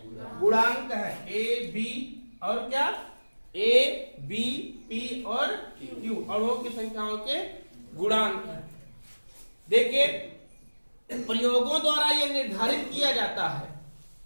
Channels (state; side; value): inverted; both; correlation -1.00